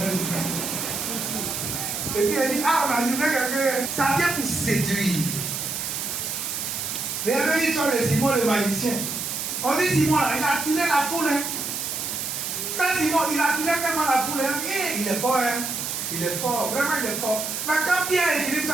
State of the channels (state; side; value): noise; right; hiss, 3 dB below the sound